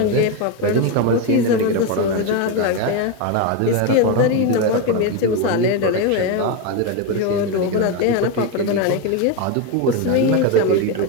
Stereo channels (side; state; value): both; different; correlation 0.03